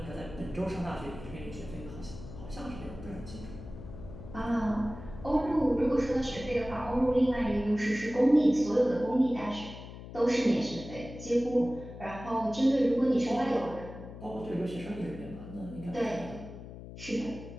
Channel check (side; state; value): left; noise; hum, 13 dB below the sound